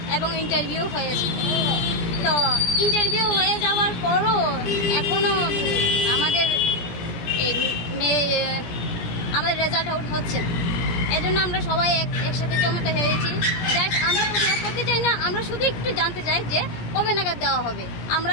এবং ইন্টারভিউ হয়েছে। তো ইন্টারভিউ হয়ে যাওয়ার পরও এখনো আমাদের রেজাল্ট আউট হচ্ছে না। এই জন্য আমরা সবাই একসাথে জমাতে হয়েছি। আমরা প্রতিবাদ করতে চাই না, আমরা শুধু একটু জানতে চাই যে কবে নাগাদ দেওয়া হবে। আমরা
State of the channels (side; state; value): right; late; 17 ms